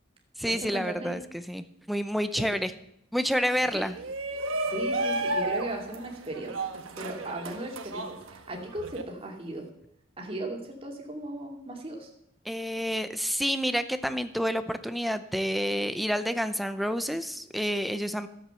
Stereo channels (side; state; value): both; normal; correlation 0.63